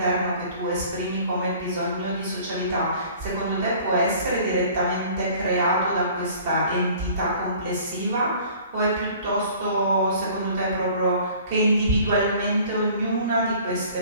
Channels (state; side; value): inverted; both; correlation -0.50